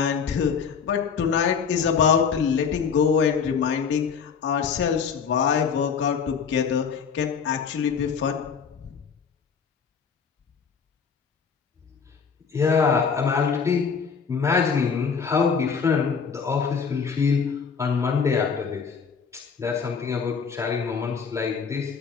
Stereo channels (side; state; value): right; quieter; 6.2 dB